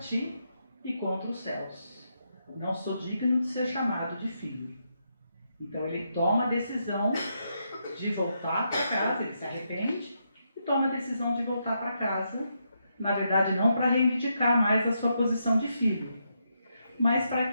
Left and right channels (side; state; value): both; inverted; correlation -0.81